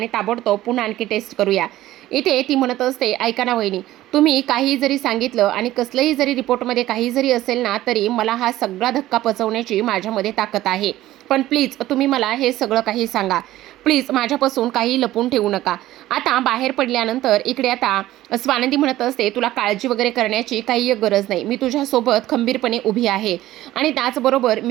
ताबडतोब पुन्हा आणखी टेस्ट करूया. इथे ती म्हणत असते, ऐका ना वहिनी, तुम्ही काही जरी सांगितलं आणि कसलंही जरी रिपोर्टमध्ये काही जरी असेल ना तरी मला हा सगळा धक्का पचवण्याची माझ्यामध्ये ताकद आहे, पण प्लीज तुम्ही मला हे सगळं काही सांगा, प्लीज माझ्यापासून काही लपून ठेवू नका. आता बाहेर पडल्यानंतर इकडे आता स्वानंदी म्हणत असते, तुला काळजी वगैरे करण्याची काही गरज नाही, मी तुझ्यासोबत खंबीरपणे उभी आहे आणि त्याचबरोबर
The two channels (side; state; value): left; quieter; 15.2 dB